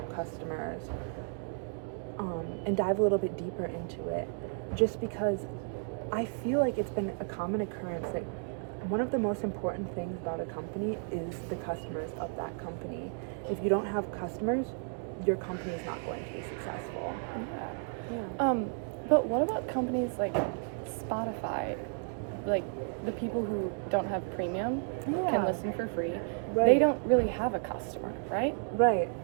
customers and dive a little bit deeper into it, just because I feel like it's been a common occurrence that one of the most important things about a company is the customers of that company. If you don't have customers, your company is not going to be successful. Yeah. But what about companies like Spotify? Like the people who don't have premium can listen for free. Right. They don't really have a customer, right? Right.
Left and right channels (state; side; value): silent; left; 56 dB below the other